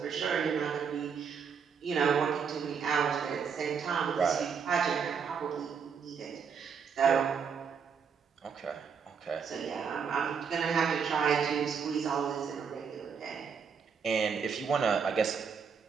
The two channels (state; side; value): quieter; left; 6.4 dB